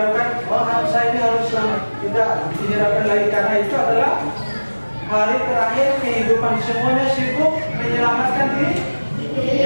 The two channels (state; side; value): inverted; both; correlation -1.00